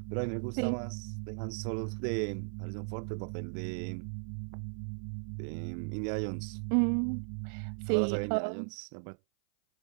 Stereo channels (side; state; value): left; silent; 54 dB below the other